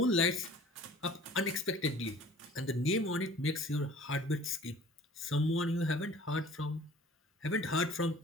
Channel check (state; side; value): normal; both; correlation 0.48